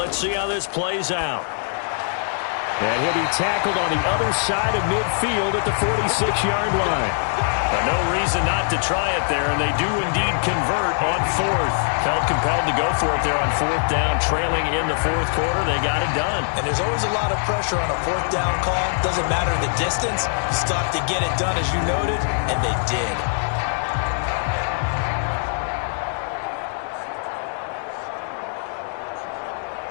see how this plays out. And he'll be tackled on the other side of midfield at the 46-yard line. No reason not to try it there, and they do indeed convert on 4th. Felt compelled to go for it there on 4th down, trailing in the 4th quarter. They got it done. And there's always a lot of pressure on a 4th down call. Doesn't matter the distance. Stop to get it done, as you noted, and they did.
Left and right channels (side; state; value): right; silent; digital silence